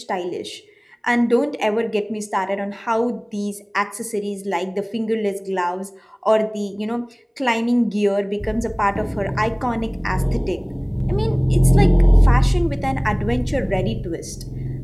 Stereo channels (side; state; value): both; identical; correlation 1.00